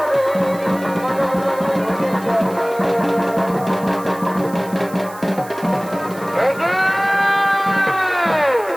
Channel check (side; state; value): right; noise; hiss, 20 dB below the sound